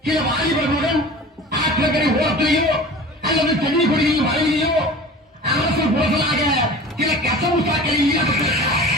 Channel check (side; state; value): both; normal; correlation 0.38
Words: சில வாலிபர்களுடன் ஆற்றங்கரை ஓரத்திலேயோ அல்லது சென்னை கொடியில் வரையிலேயோ அரசு புரசலாக சில கசவு சாக்களில் ஈடுபட்டிருக்கிறார்.